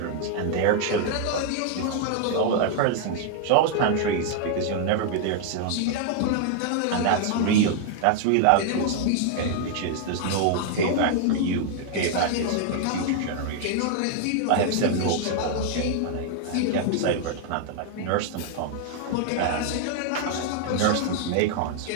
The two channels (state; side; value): different; both; correlation 0.00